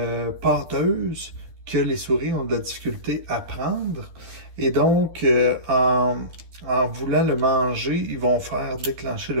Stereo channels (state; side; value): late; left; 12 ms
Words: pâteuse que les souris ont de la difficulté à prendre. Et donc, en voulant le manger, ils vont faire déclencher